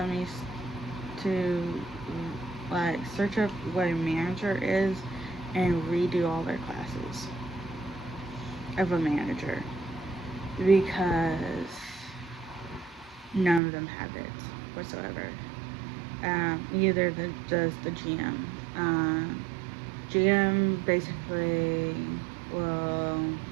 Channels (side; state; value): left; drops out; at 13.6 s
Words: needs to like search up what a manager is and redo all their classes of a manager because none of them have it whatsoever. Either does the GM. GM basically will